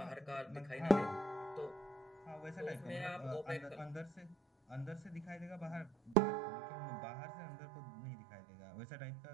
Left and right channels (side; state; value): left; drops out; at 6.2 s